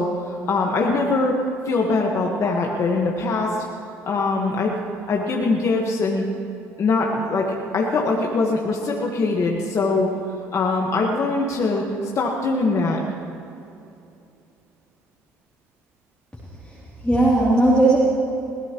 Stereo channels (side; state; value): both; normal; correlation 0.65